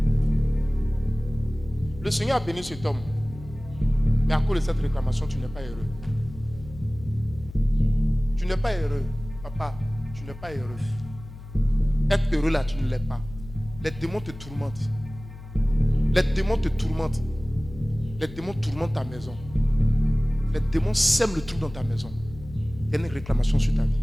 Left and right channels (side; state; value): left; noise; hum, 15 dB below the sound